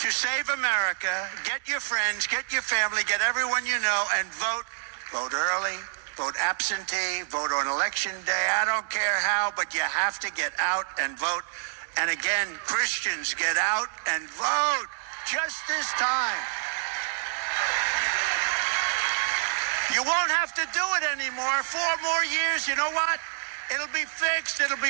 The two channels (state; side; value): silent; left; digital silence